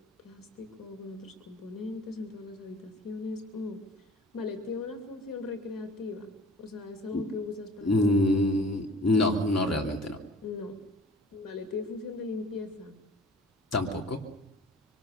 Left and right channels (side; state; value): both; normal; correlation 0.48